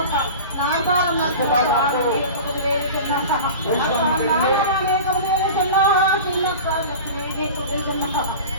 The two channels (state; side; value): inverted; both; correlation -0.34